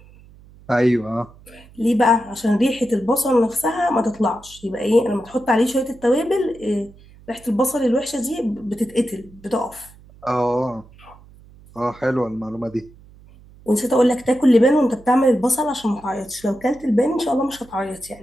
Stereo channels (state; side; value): noise; right; hum, 24 dB below the sound